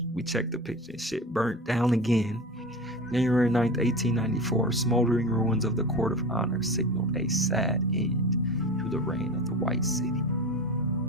we checked the picture and shit burnt down again. January 9th, 1894, smoldering ruins of the Court of Honor signaled a sad end to the reign of the White City.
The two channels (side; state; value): both; normal; correlation 0.29